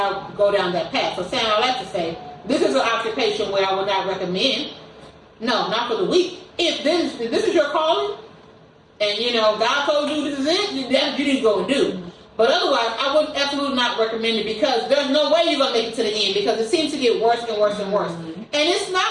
go down that path. So saying all that to say, this is an occupation where I would not recommend. No, not for the weak. If this is your calling, and you know God told you this is it, you need to go and do. But otherwise, I would absolutely not recommend it because there's no way you're gonna make it to the end because it seems to get worse and worse and worse. And it's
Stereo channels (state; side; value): identical; both; correlation 1.00